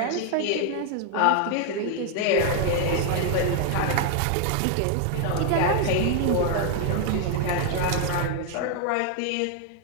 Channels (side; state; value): both; different; correlation 0.00